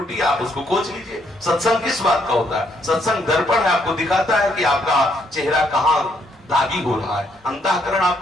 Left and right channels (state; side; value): normal; both; correlation 0.72